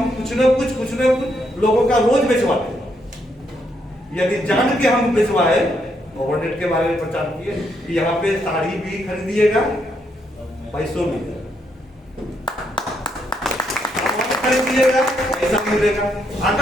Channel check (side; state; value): both; normal; correlation 0.76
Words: कुछ न कुछ लोगों का रोज बेचवाते हैं। यदि जान के हम बेचवाए, ओवरनेट के बारे में प्रचार किए कि यहाँ पे साड़ी भी खरीदिएगा, पैसों मिलेगा, खरीदिएगा पैसा मिलेगा।